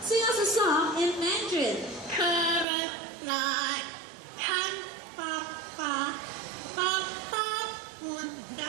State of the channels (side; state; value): left; drops out; at 2.7 s